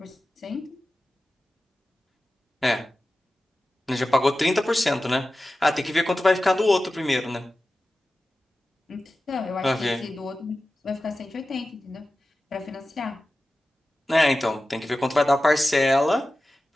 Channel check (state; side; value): normal; both; correlation 0.94